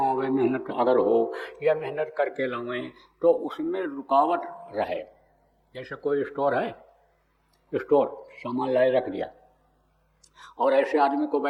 होवे, मेहनत अगर हो या मेहनत करके लावें तो उसमें रुकावट रहे। जैसे कोई स्टोर है, स्टोर सामान लाए रख दिया और ऐसे आदमी को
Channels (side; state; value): both; identical; correlation 1.00